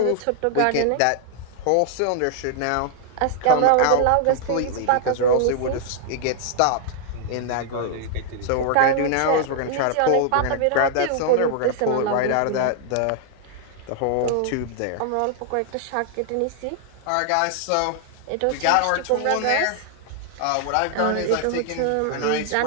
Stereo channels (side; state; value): both; different; correlation 0.00